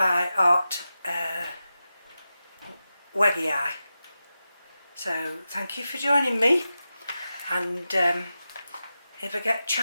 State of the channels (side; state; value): both; inverted; correlation -0.92